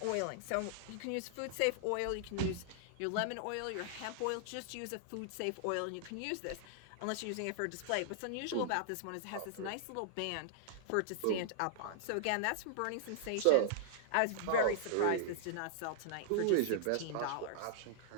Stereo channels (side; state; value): both; different; correlation -0.01